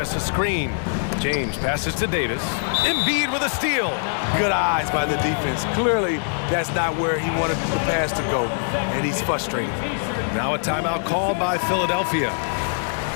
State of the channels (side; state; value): right; silent; digital silence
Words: a screen. James passes to Davis. Embiid with a steal. Good eyes by the defense. Clearly, that's not where he wanted the pass to go, and he's frustrated. Now a timeout called by Philadelphia.